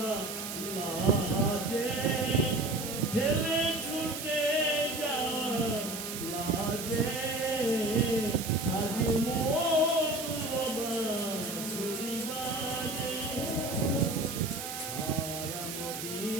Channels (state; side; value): noise; right; hiss, 7 dB below the sound